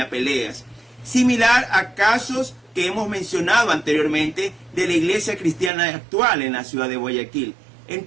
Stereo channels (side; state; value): left; drops out; at 5.7 s